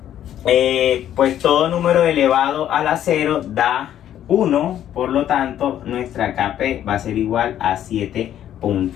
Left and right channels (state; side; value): quieter; right; 11.1 dB